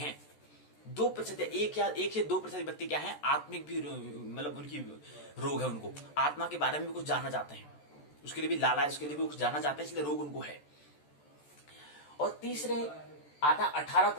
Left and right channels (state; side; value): late; right; 14 ms